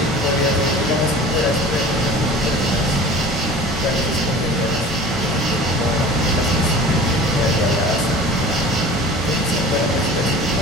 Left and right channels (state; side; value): normal; both; correlation 0.41